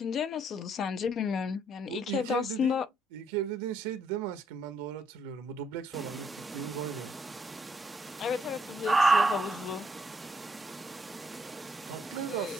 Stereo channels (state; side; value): normal; both; correlation 0.71